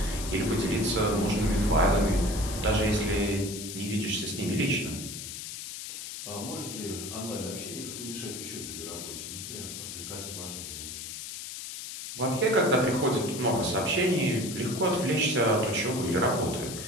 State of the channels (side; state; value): left; noise; hiss, 8 dB below the sound